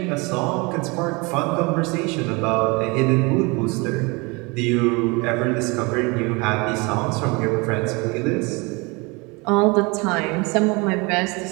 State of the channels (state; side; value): quieter; left; 27.3 dB